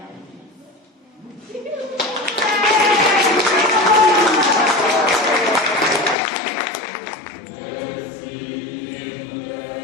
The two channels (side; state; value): right; drops out; at 6.2 s